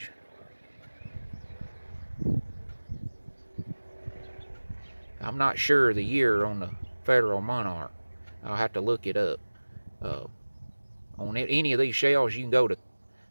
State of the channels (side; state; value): both; inverted; correlation -1.00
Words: I'm not sure of the year on the Federal Monarch. I'll have to look it up. On any of these shells, you can go to